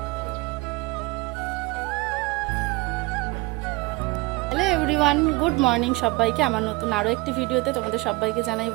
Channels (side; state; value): left; quieter; 22.6 dB